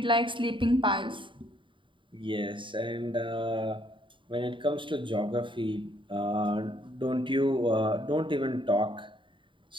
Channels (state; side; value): late; left; 0.24 ms